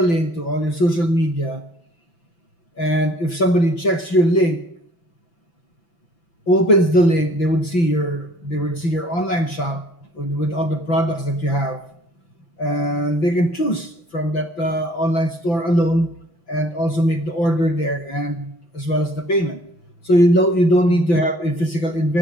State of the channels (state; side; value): late; right; 5.9 ms